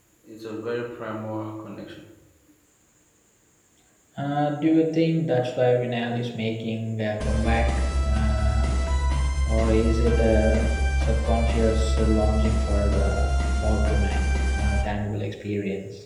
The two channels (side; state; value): both; identical; correlation 1.00